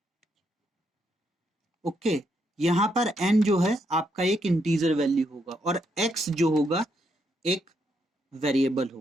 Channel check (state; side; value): normal; both; correlation 0.77